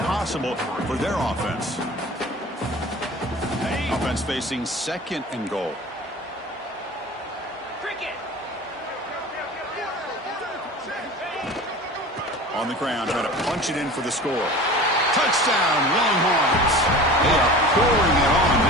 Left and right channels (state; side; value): normal; both; correlation 0.38